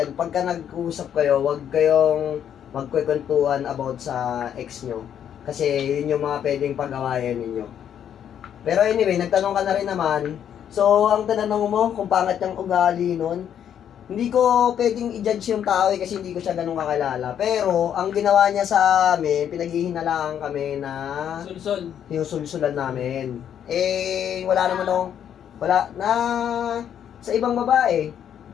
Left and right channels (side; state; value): right; quieter; 9.3 dB